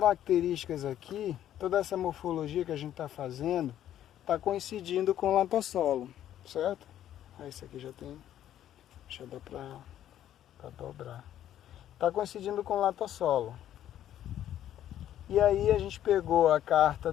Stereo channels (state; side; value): quieter; right; 11.5 dB